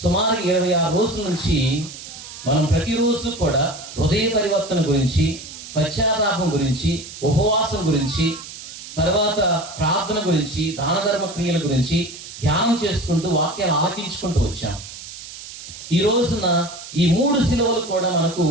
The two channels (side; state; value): right; noise; hiss, 13 dB below the sound